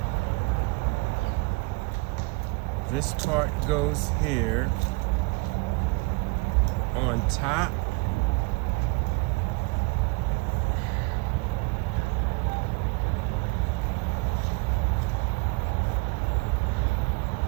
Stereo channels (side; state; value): left; quieter; 27.4 dB